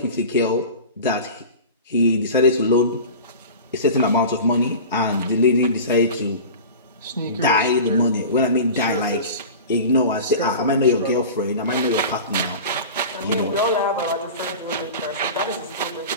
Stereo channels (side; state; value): both; inverted; correlation -0.34